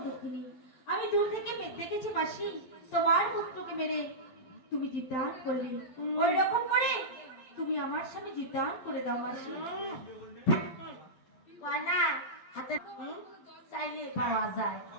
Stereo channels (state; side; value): late; right; 12 ms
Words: দক্ষিণী আমি দূর থেকে দেখেছি মাসি তোমার পুত্রকে মেরে তুমি জীবদান করলে ওই রকম করে তুমি আমার স্বামী জীবদান করে দাও মাসি কয়না হাতে চাইলে পাওয়া যায়